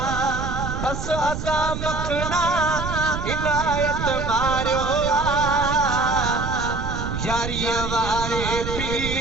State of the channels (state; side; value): noise; right; rumble, 5 dB below the sound